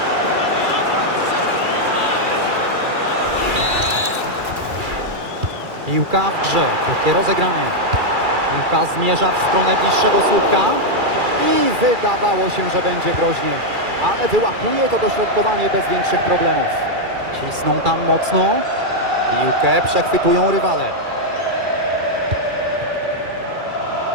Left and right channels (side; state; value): left; late; 2.4 ms